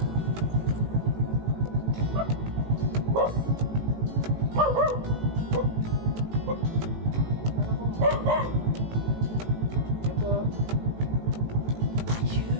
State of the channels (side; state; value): left; late; 18 ms